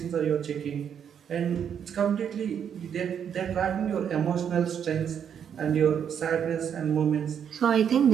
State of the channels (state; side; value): quieter; left; 8.2 dB